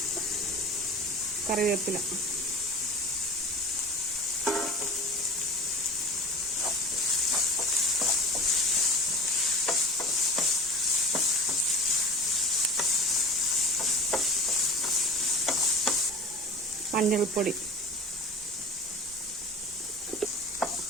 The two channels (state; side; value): normal; both; correlation 0.37